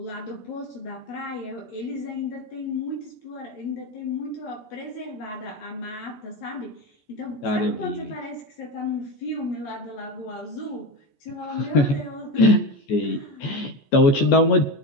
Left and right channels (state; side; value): late; right; 14 ms